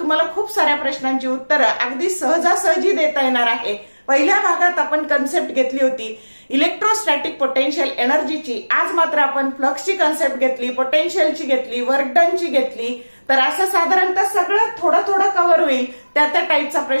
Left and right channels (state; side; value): inverted; both; correlation -1.00